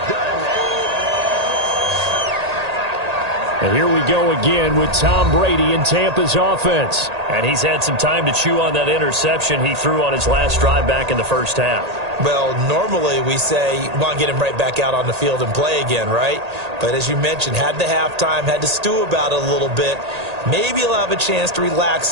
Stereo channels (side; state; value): left; late; 1.8 ms